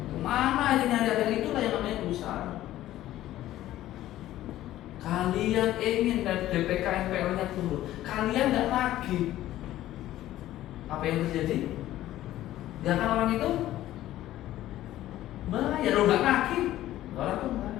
Kemana aja nyari, akhirnya itulah yang namanya berusaha. Kalian ingin dan DPK NPL-nya turun, kalian nggak nagih, apa yang terjadi? Nggak kan orang itu bayar, lo nggak nagih, orang tuh bayar.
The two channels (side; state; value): right; quieter; 14.2 dB